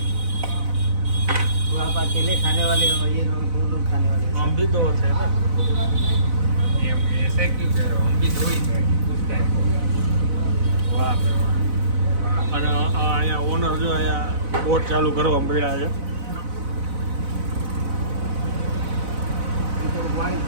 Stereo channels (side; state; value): left; late; 4.0 ms